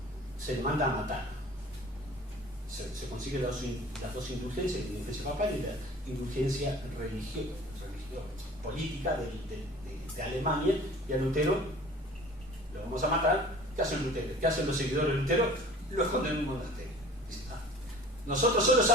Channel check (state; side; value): normal; both; correlation 0.45